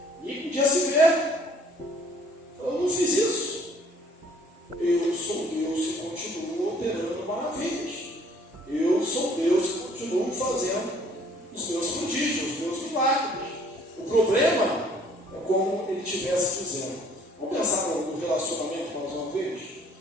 e podia se ver. Eu não fiz isso. Eu sou Deus e continuo operando maravilhas. Eu sou Deus e continuo fazendo os meus prodígios, os meus milagres. O problema é como ele estivesse dizendo. Vamos pensar no relacionamento mais uma vez?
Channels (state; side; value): normal; both; correlation 0.58